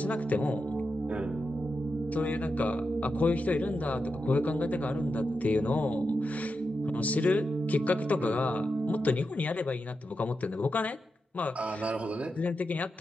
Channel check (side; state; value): both; normal; correlation 0.88